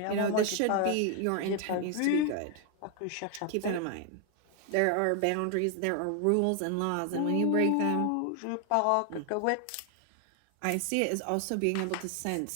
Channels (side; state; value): both; different; correlation 0.00